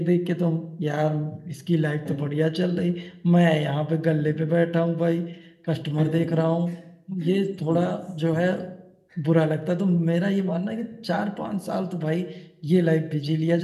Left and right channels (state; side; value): identical; both; correlation 1.00